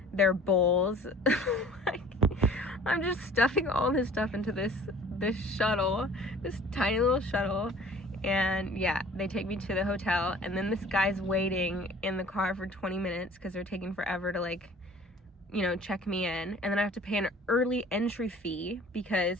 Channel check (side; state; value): both; normal; correlation 0.48